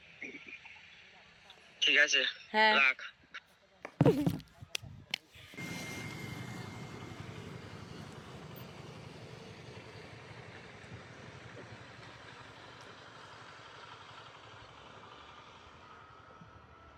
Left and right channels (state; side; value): identical; both; correlation 1.00